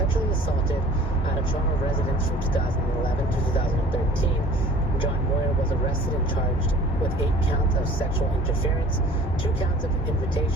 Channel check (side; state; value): both; normal; correlation 0.48